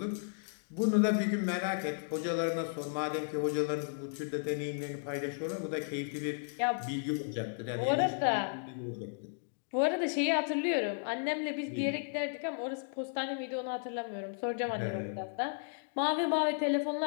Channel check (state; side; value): silent; right; digital silence